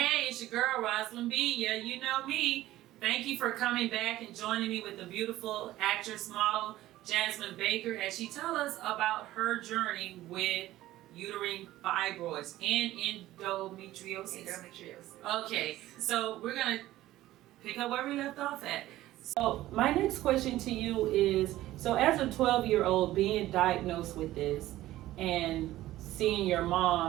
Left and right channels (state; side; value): quieter; left; 15.4 dB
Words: it's your girl, Roslyn B. Yeah, you know me. Thank you for coming back and joining me with the beautiful actress model, Jazzmon Baker, as she tells us about her journey with uterine fibroids and endometriosis. Okay, so we're going to pick up where we left off at. So my next question to you is, so as a 12-year-old being diagnosed with this and seeing your